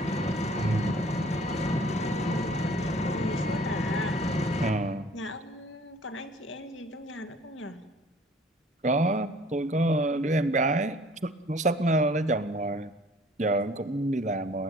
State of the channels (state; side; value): normal; both; correlation 0.53